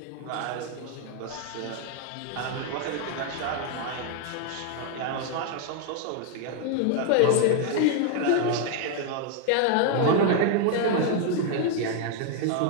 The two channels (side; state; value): both; different; correlation 0.00